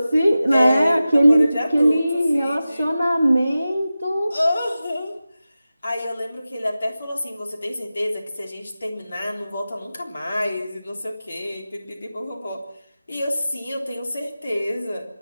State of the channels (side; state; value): both; inverted; correlation -0.95